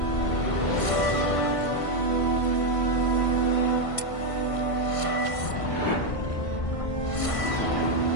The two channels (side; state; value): right; late; 1.5 ms